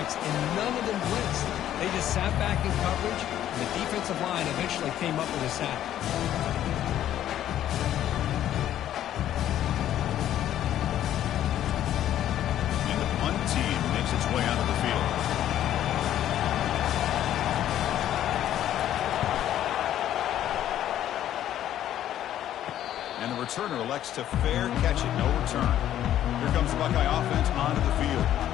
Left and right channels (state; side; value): quieter; right; 11.7 dB